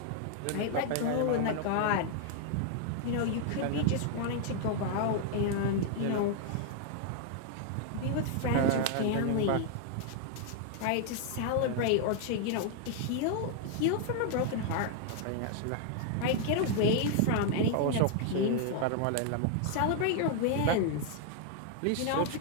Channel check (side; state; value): both; different; correlation 0.00